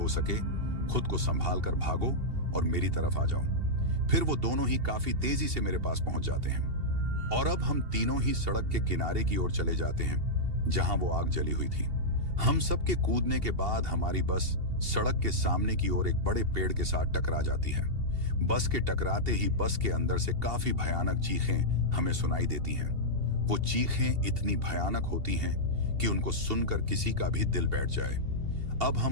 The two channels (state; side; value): late; left; 2.7 ms